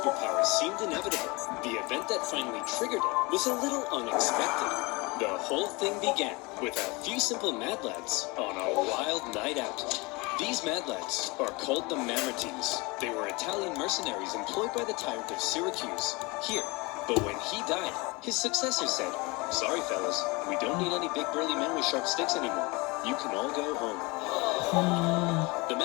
seemed inevitable, the event that finally triggered it was a little unexpected. The whole thing began with a few simple mad lads on a wild night out. These mad lads are called the Mamertines. They were Italian mercenaries employed by the tyrant of Syracuse here. But when he died, his successor said, "Sorry, fellas, we don't need any big burly men with sharp sticks anymore. You can all go home." The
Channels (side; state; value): right; quieter; 25.7 dB